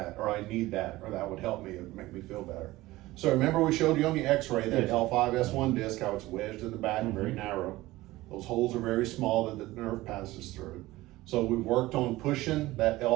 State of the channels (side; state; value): left; quieter; 18.2 dB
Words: or I need that, or that would help me, it would make me feel better. So remember we showed you on the x-ray that Yes. L5-S1 disc, how it's wedged in the back and very narrow. Those holes are very small that the nerve passes through. So we've worked on pushing that